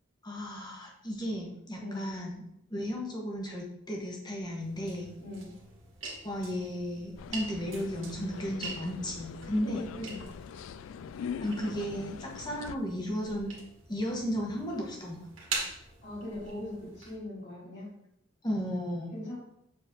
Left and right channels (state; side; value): normal; both; correlation 0.68